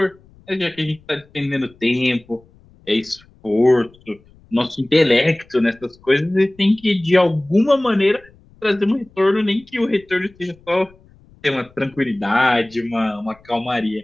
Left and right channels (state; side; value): noise; left; rumble, 28 dB below the sound